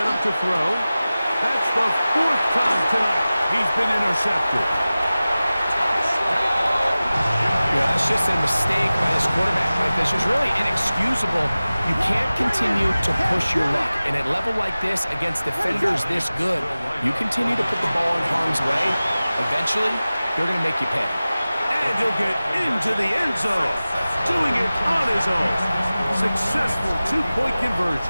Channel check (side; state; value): both; inverted; correlation -0.97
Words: up to throw. That's the 4th time tonight he's been intercepted. Yeah, that's just a mistake by this quarterback, Mike. That's just really inexcusable. You can't continue to push your luck. And at a level like this, against defenders this good, you continue to put the ball in harm's way. Eventually, they're going to make you pay. And he'll get into the end zone, doing it on his own. Successful 2-point